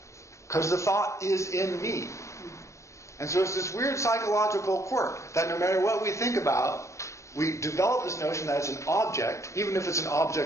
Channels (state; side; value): late; right; 0.15 ms